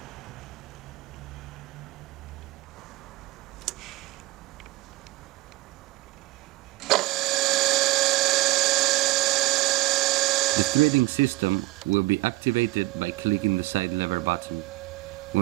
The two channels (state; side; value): quieter; left; 19.4 dB